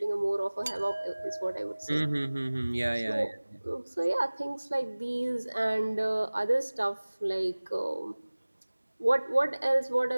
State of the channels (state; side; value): inverted; both; correlation -1.00